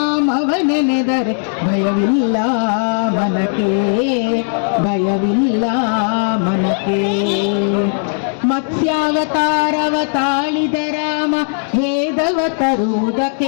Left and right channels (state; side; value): silent; right; digital silence